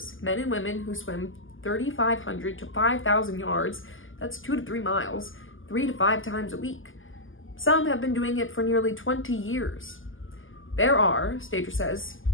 men and women who swim 3,500 to 5,000 yards, that's 2 to 3 miles, 3 to 5 times a week. Some have been doing it for nearly 20 years. There are, Stager says,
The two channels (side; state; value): right; late; 0.58 ms